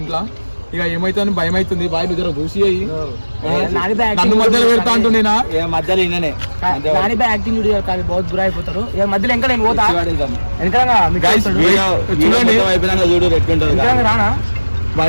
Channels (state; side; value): inverted; both; correlation -1.00